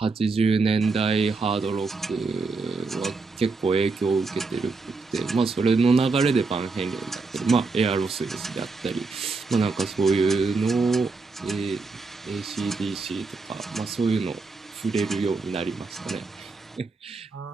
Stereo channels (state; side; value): quieter; left; 4.1 dB